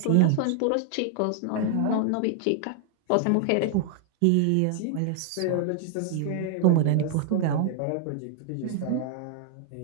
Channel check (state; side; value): different; both; correlation 0.00